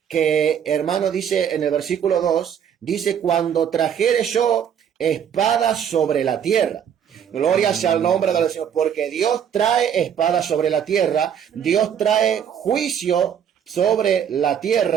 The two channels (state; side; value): quieter; left; 8.6 dB